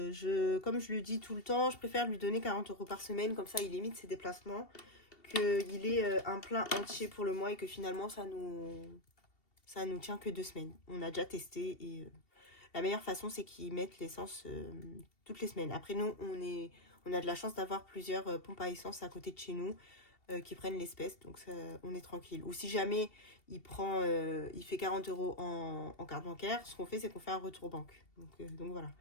je le dis tout le temps, je préfère lui donner 40 € par semaine, comme ça il limite ses déplacements, qu'il ait un plein entier pour le mois et que finalement ça nous tient que 2 semaines. On a déjà testé et la meilleure façon c'est qu'ils mettent l'essence toutes les semaines. Après nous, on a de la chance d'avoir plusieurs pompes à essence à côté de chez nous qui prennent l'espèce, donc ça, on est tranquille. Ou si jamais il fait 40 € en carte bancaire, ce qu'on fait, c'est qu'on fait un retour banque. Donc voilà.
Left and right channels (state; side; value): late; right; 2.7 ms